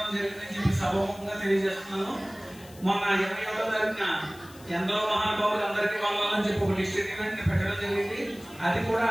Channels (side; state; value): left; noise; hiss, 22 dB below the sound